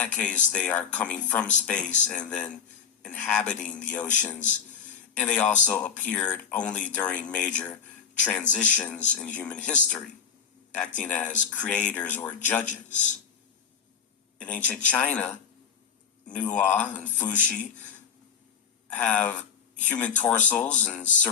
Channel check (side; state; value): right; quieter; 7.2 dB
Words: case, they are coming from space and then inhabiting the oceans, and they also appeared only during major transitions in human history, acting as creators or judges. In ancient China, Nuwa and Fuxi have human torsos and